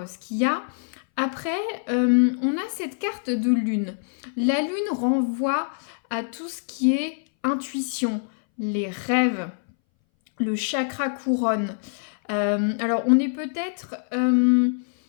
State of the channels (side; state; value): right; silent; 61 dB below the other